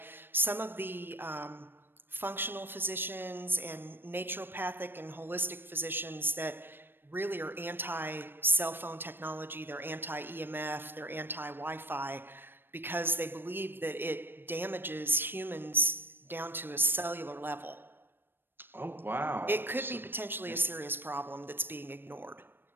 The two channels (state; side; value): late; left; 0.098 ms